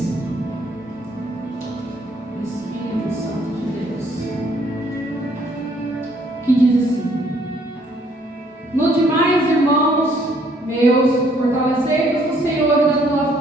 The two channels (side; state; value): both; normal; correlation 0.65